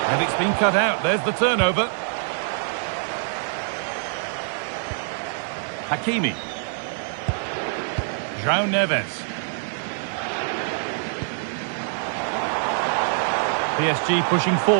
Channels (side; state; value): left; silent; digital silence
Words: And it's been cut out. There's the turnover. Hakimi. João Neves. PSG pushing